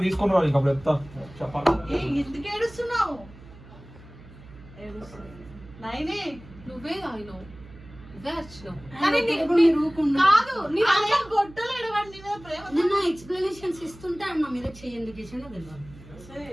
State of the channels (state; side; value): noise; right; hum, 19 dB below the sound